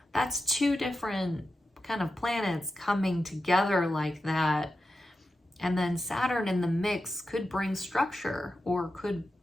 that's two different kind of planets coming together like that. And then Saturn in the mix could bring structure, or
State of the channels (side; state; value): both; normal; correlation 0.90